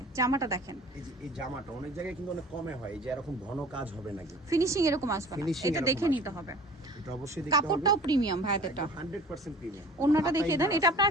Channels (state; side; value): normal; both; correlation 0.45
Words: জামাটা দেখেন, এই জামাটা অনেক জায়গায় কিন্তু অনেক কমে হয়, এই যে এরকম ঘন কাজ হবে নাকি, ফিনিশিং এরকম আসবে না, Finishing এটা দেখে এরকম নিতে হবে। এটা অবশ্যই দেখতে হবে। কাপড়টাও প্রিমিয়াম ভাই, এটা 100% প্রিমিয়াম। ওন্নাটা দেখিয়ে দেন, এটা আপনার